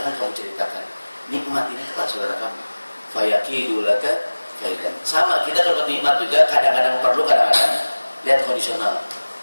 kamu ceritakan nikmat ini kepada saudara kamu. Fayakidu laka kaidan. Sama kita kalau nikmat juga kadang-kadang perlu, kadang-kadang lihat kondisional.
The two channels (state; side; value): inverted; both; correlation -1.00